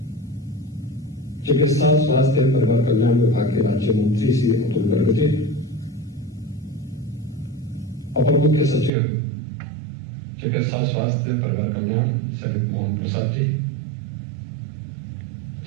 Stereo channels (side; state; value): left; drops out; at 8.9 s